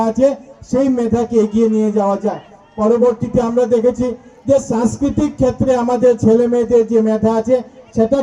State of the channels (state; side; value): identical; both; correlation 1.00